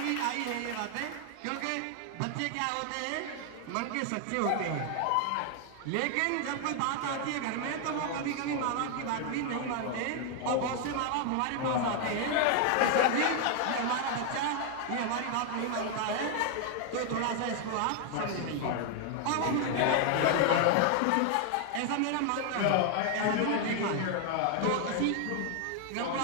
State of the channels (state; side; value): different; both; correlation 0.00